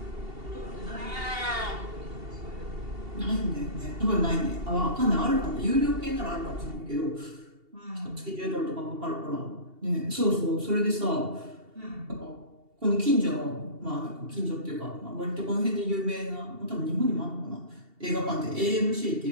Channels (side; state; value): left; late; 2.7 ms